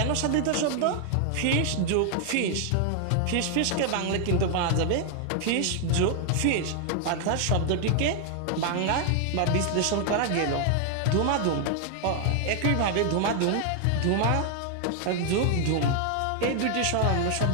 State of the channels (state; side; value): different; both; correlation 0.00